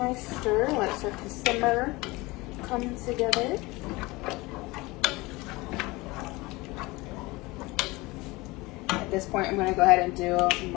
stir. Let it start to simmer, come together. At this point, I'm going to go ahead and do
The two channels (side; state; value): right; quieter; 22.4 dB